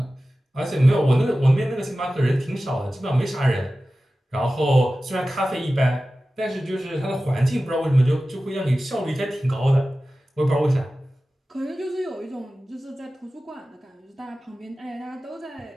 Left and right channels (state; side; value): normal; both; correlation 0.95